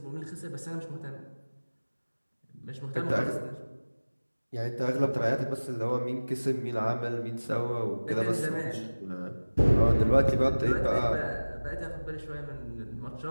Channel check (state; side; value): inverted; both; correlation -1.00